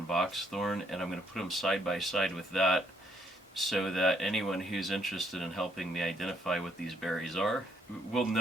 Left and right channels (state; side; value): normal; both; correlation 0.70